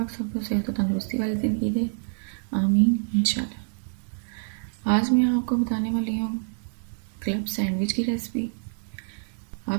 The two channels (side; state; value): left; silent; digital silence